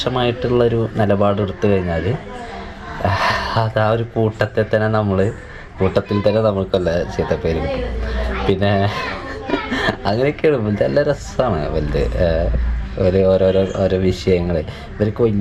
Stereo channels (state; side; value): identical; both; correlation 1.00